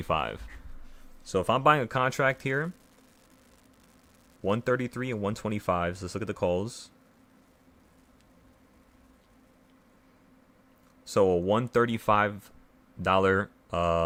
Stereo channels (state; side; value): identical; both; correlation 1.00